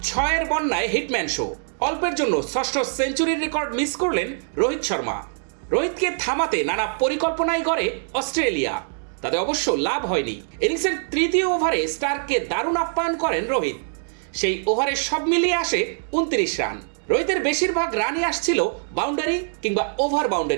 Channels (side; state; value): left; silent; digital silence